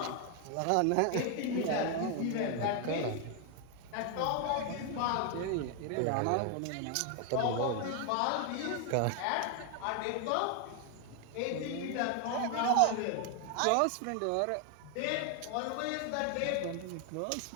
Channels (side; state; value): both; different; correlation 0.01